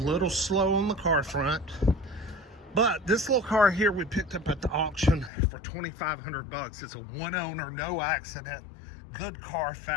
slow on the car front. But this little car here we picked up at the auction for $2,500. It's a one owner, no accident, good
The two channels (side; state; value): right; drops out; at 5.3 s